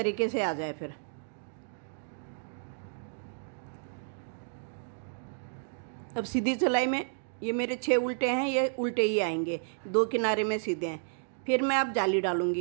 से आ जाए। फिर अब सीधी सिलाई में ये मेरे 6 उल्टे हैं, ये उल्टे ही आएंगे, 2 किनारे में सीधे हैं। फिर मैं अब जाली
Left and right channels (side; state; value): left; silent; digital silence